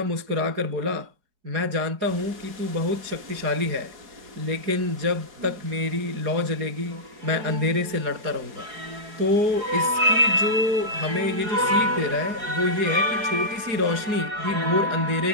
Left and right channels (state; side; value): late; left; 4.8 ms